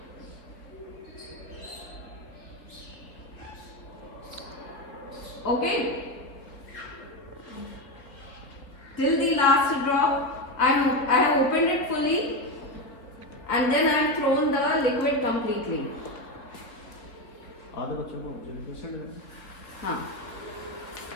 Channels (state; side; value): late; right; 3.6 ms